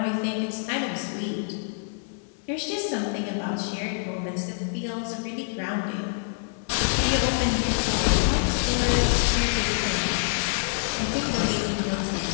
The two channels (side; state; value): right; silent; 61 dB below the other